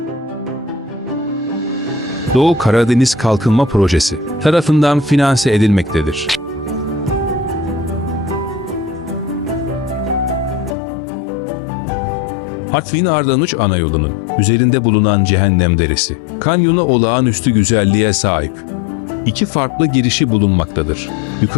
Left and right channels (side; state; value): right; drops out; at 10.8 s